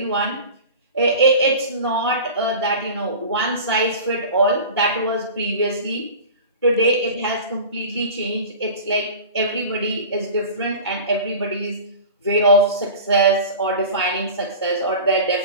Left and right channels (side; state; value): both; inverted; correlation -0.36